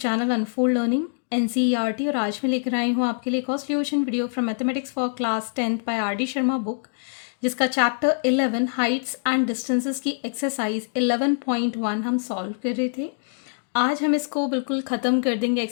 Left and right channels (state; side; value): silent; right; digital silence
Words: unfold learning NCERT. और आज मैं लेकर आई हूँ आपके लिए cost solution video from mathematics for class 10th by R D Sharma book, जिसका चैप्टर 11 हाइट्स एंड डिस्टेंसेस की एक्सरसाइज 11.1 हम सॉल्व कर रहे थे। आज हम इसको बिल्कुल ख़त्म कर देंगे